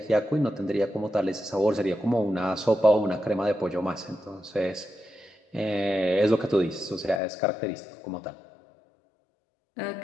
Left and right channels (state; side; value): drops out; right; at 7.2 s